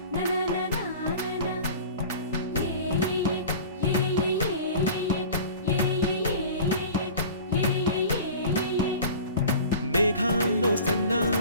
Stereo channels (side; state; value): both; inverted; correlation -0.40